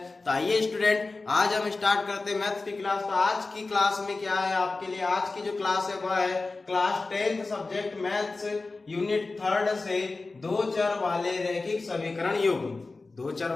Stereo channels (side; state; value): right; quieter; 3.6 dB